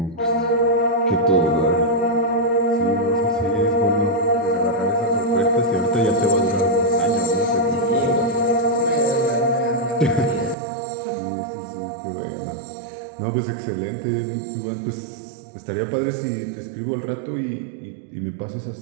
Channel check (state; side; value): drops out; left; at 10.6 s